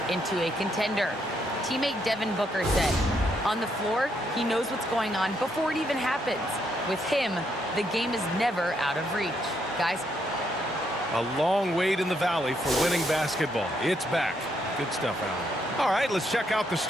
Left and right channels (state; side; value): normal; both; correlation 0.75